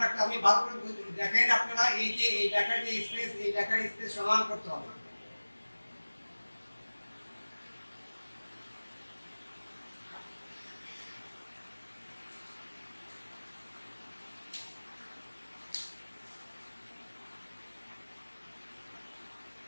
রাখতে হবে। আমি ভালো করে দেখেন আপনারা, এই যে এই লেখার যে স্পেস, এই লেখার স্পেস সমান করতে হবে।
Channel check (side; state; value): both; inverted; correlation -1.00